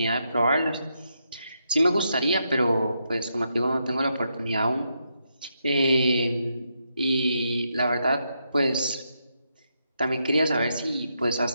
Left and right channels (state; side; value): inverted; both; correlation -0.81